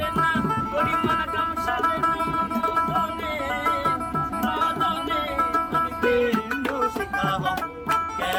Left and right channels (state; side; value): identical; both; correlation 1.00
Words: না গরিমান কাম সারে না মদনে মদনে আমি প্রেম রসিকা হব